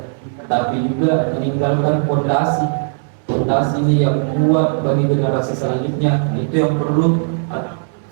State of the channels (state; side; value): silent; left; 68 dB below the other